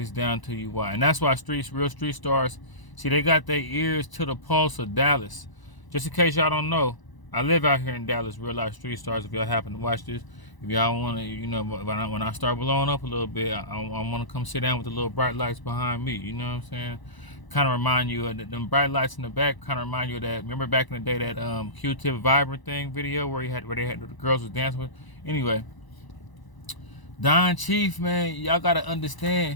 down to you why. And that's why real street stars, see, they got their ears to the pulse of Dallas. Just in case y'all don't know, I live out here in Dallas, real life street stars. If y'all happen to watch this, if y'all want to, you know, when I start blowing up a little bit, I want to come sit down with the little bright lights behind me. You know what I'm saying? Kind of remind you of them bright lights in the back. Kind of remind you of that. Remember back in the day that Q-Tip Vibrant thing video where the girls was dancing with. Anyway, Don Chief, man, y'all gotta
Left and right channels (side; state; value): right; late; 1.0 ms